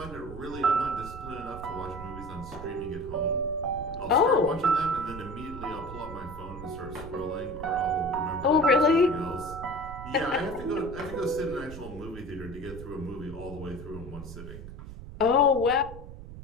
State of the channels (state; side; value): noise; right; rumble, 12 dB below the sound